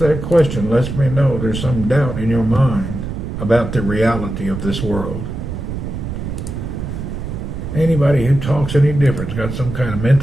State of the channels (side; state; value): right; noise; rumble, 6 dB below the sound